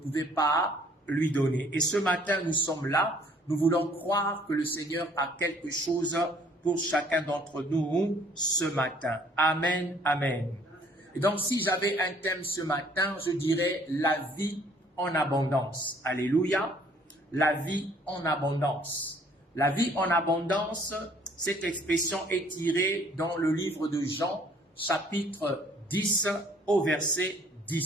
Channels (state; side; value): normal; both; correlation 0.59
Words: pas lui donner. Et ce matin, nous sommes là, nous voulons croire que le Seigneur a quelque chose pour chacun d'entre nous ce matin. Amen, amen. Et donc, si j'avais un thème ce matin, je dirais la vie en abondance. Alléluia. La vie en abondance. La vie en abondance, cette expression est tirée dans le livre de Jean, chapitre 10, au verset